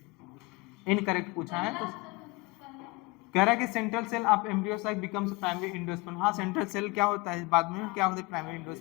इनकरेक्ट पूछा है। तो कह रहा है कि central cell of embryo sac becomes primary endosperm. हाँ सेंट्रल सेल क्या होता है? बाद में क्या होता है? प्राइमरी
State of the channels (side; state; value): right; quieter; 23.5 dB